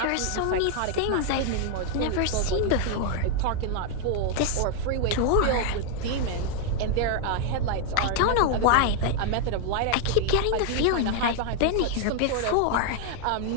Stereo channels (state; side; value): different; both; correlation 0.00